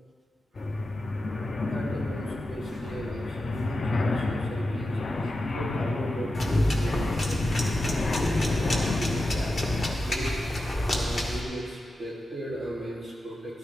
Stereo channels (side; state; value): both; normal; correlation 0.91